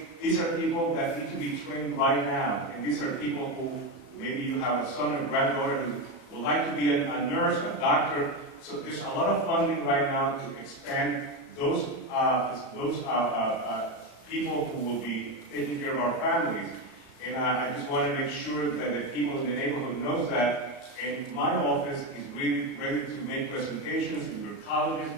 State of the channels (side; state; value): right; late; 33 ms